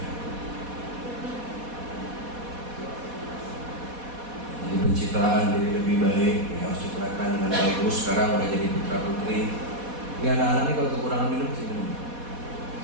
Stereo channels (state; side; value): late; left; 4.1 ms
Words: Jadi pencitraan jadi lebih baik, yang harus citrakan dengan bagus. Sekarang udah jadi putra putri. Ini anak-anak ini kalau kekurangan minum pasti minum.